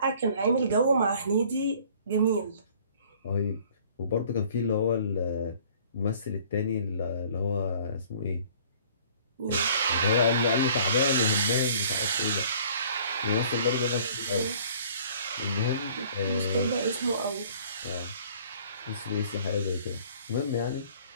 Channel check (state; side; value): inverted; both; correlation -0.54